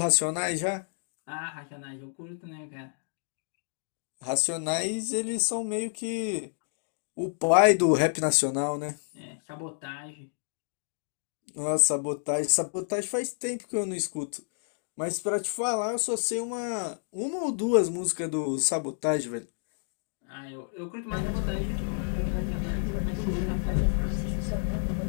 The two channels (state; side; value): silent; right; digital silence